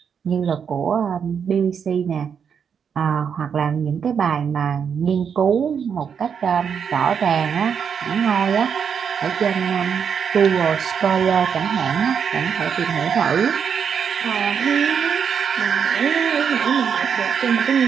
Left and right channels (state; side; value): quieter; left; 7.2 dB